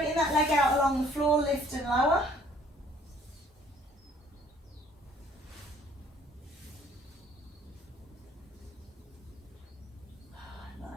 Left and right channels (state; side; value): normal; both; correlation 0.58